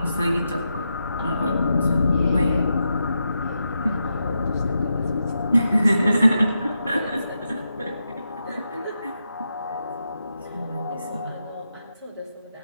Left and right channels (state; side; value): inverted; both; correlation -0.86